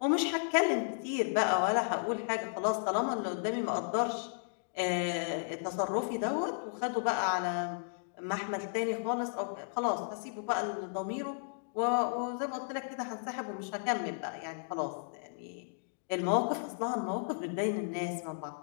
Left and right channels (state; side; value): silent; right; digital silence